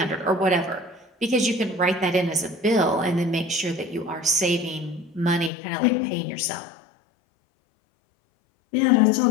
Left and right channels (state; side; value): drops out; right; at 5.5 s